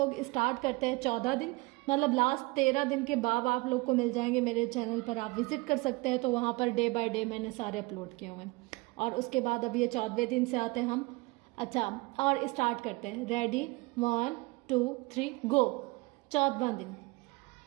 स्टार्ट करते हैं 14 दिन, मतलब लास्ट 13 दिन के बाद आप लोग को मिल जाएंगे मेरे चैनल पर, आप विजिट कर सकते हैं। तो वहाँ पर डे बाय डे मैंने सारे अपलोड किए हुए हैं। और उसके बाद अब ये 14वें दिन से आते हैं हम। अच्छा, और स्टार्ट करते हैं। रेडी, 1 2 3 गो। 14वां दिन।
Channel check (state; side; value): quieter; left; 24.5 dB